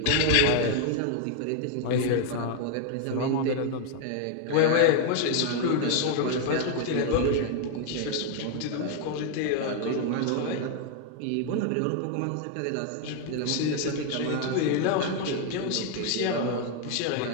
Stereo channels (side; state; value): both; different; correlation 0.00